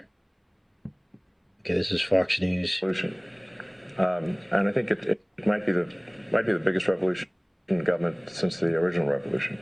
Okay, this is Fox News. And I think it might be the biggest revolution in government since the original revolution.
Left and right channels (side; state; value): both; identical; correlation 1.00